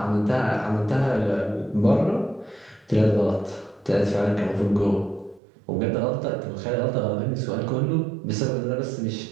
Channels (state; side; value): drops out; left; at 5.4 s